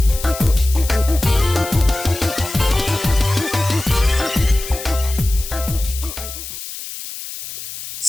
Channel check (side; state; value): left; noise; hiss, 10 dB below the sound